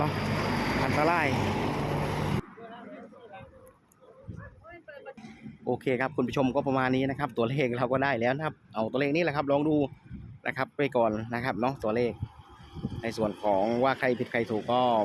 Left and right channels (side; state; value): both; identical; correlation 1.00